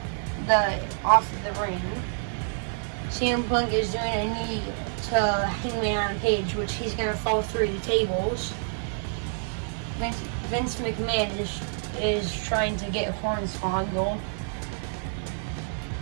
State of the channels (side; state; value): left; silent; digital silence